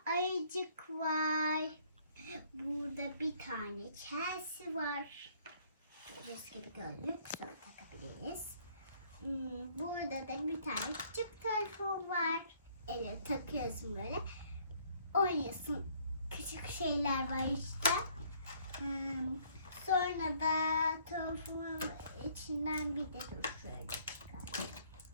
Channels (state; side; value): inverted; both; correlation -0.62